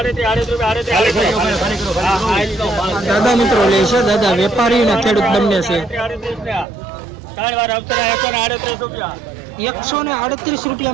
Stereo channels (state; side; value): drops out; left; at 6.7 s